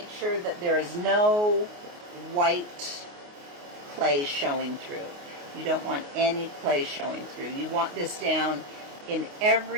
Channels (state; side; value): late; left; 29 ms